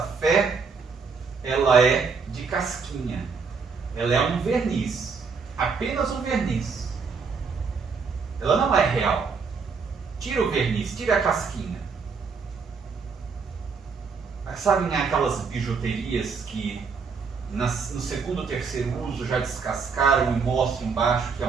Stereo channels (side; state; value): left; quieter; 5.2 dB